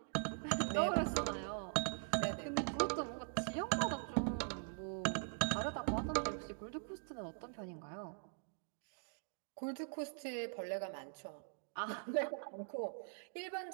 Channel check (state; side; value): silent; left; digital silence